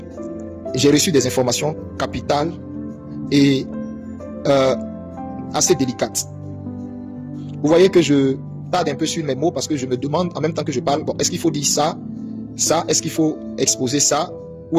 j'ai reçu des informations capitales et assez délicates. Vous voyez que je tarde un peu sur mes mots parce que je me demande en même temps que je parle, bon, est-ce qu'il faut dire ça, est-ce qu'il faut exposer ça,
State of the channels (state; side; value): identical; both; correlation 1.00